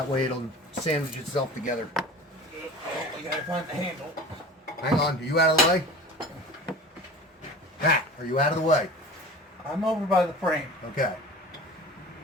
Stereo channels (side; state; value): both; normal; correlation 0.38